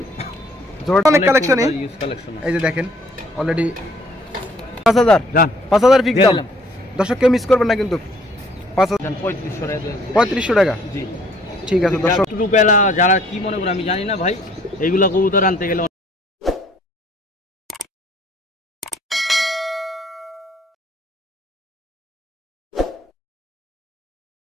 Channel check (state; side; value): normal; both; correlation 0.61